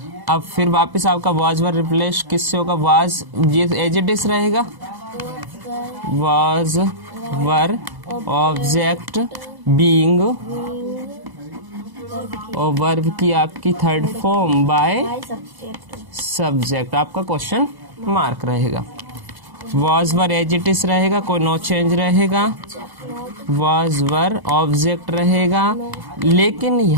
अब फिर वापस आपका वाज वर रिप्लेस किससे होगा, वाज, ये एज इट इज रहेगा, वाज वर ऑब्जेक्ट बीइंग, और वर्ब की आपकी थर्ड फॉर्म बाय सब्जेक्ट, आपका क्वेश्चन मार्क रहेगा। Was were as it is रहेगा, कोई नो चेंज रहेगा, वाज वर ऑब्जेक्ट रहेगा, लेकिन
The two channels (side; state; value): left; late; 1.0 ms